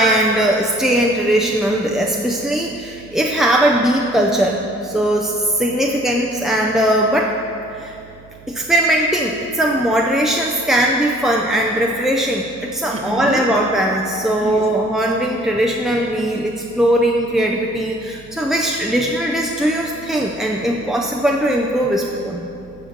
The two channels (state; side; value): noise; right; hum, 23 dB below the sound